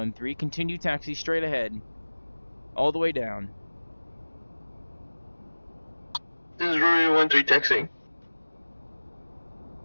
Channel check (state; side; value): inverted; both; correlation -1.00